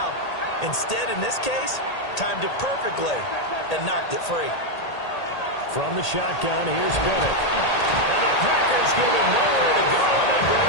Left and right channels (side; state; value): right; late; 1.8 ms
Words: Instead, in this case, timed it perfectly and knocked it free. From the shotgun, here's Bennett. And the Packers give him nowhere to go, and they bring